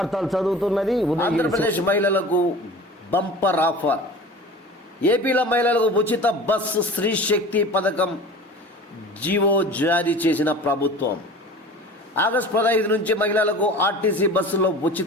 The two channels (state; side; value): normal; both; correlation 0.39